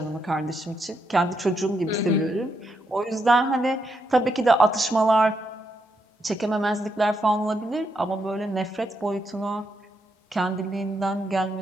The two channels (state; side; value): normal; both; correlation 0.80